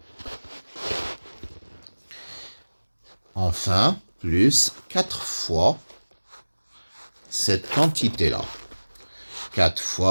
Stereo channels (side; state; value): both; inverted; correlation -1.00